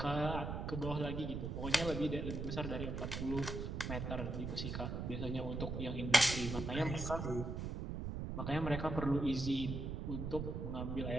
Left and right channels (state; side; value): noise; right; rumble, 3 dB below the sound